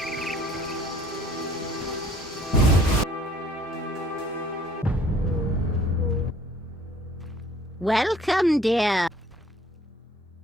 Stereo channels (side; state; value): both; normal; correlation 0.56